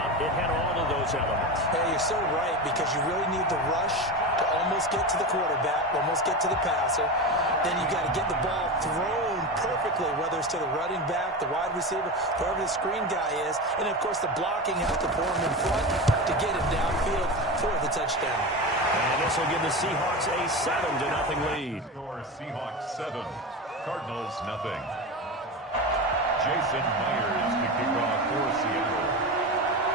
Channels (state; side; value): normal; both; correlation 0.23